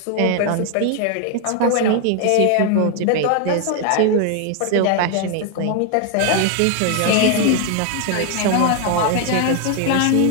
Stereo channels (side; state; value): both; different; correlation 0.00